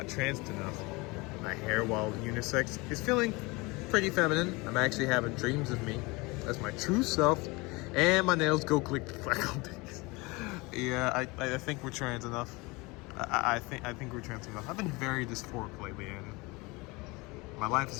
trans enough. My hair, while unisex, is feeling pretty feminine. I'm actually having dreams of me as my true self, and my nails go click clack all days. Yeah, I think we're trans enough. I think we're trans enough. I've been very dysphoric lately, and my life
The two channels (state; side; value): quieter; right; 24.8 dB